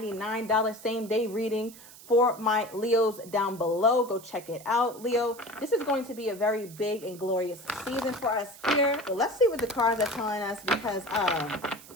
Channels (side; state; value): right; noise; hiss, 19 dB below the sound